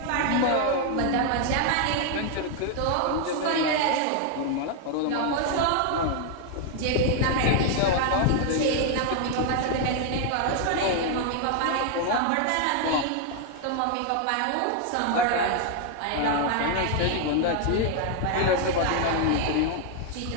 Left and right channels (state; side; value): different; both; correlation 0.00